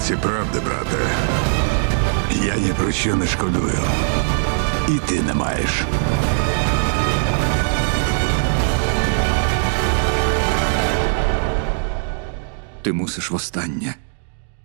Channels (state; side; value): silent; left; digital silence